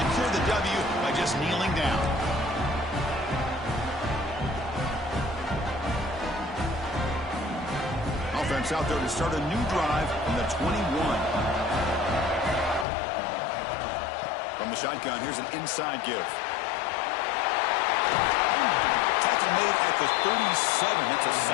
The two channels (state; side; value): drops out; right; at 12.9 s